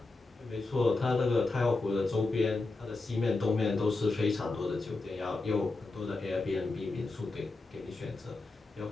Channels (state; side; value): quieter; right; 3.4 dB